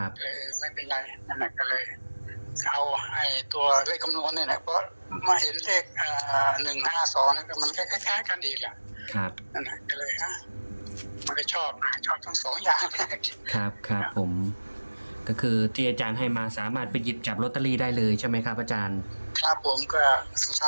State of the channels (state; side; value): inverted; both; correlation -1.00